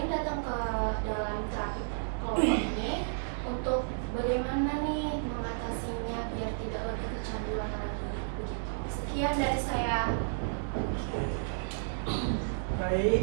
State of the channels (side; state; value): left; silent; digital silence